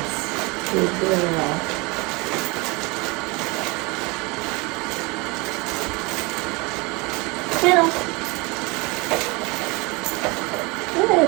good girl. Kennel. Good.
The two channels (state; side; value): quieter; left; 26.4 dB